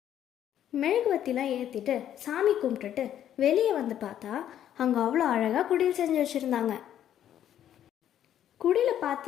மெழுகுவத்திலாம் ஏற்றிட்டு சாமி கும்பிட்டுட்டு வெளியே வந்து பார்த்தா அங்கே அவ்வளோ அழகாக குடில் செஞ்சு வச்சுருந்தாங்க. குடியில்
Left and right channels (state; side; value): quieter; right; 10.7 dB